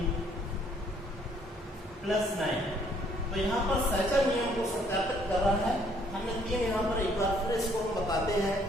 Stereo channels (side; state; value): both; normal; correlation 0.64